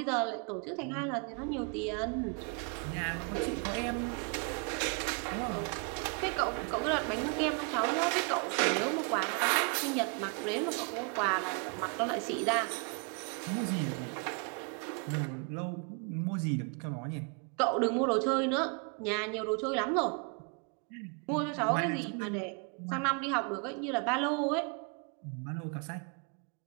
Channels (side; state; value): left; quieter; 36.5 dB